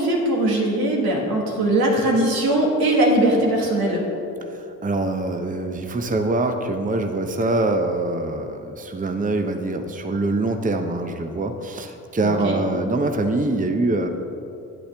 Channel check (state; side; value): normal; both; correlation 0.37